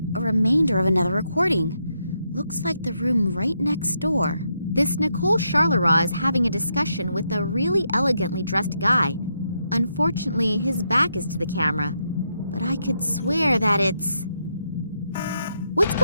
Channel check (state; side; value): inverted; both; correlation -0.80